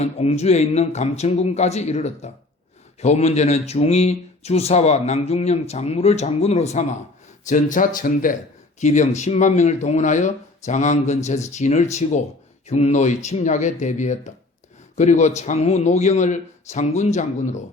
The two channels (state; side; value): quieter; right; 3.0 dB